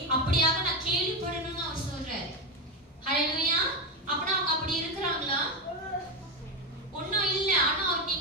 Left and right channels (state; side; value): normal; both; correlation 0.13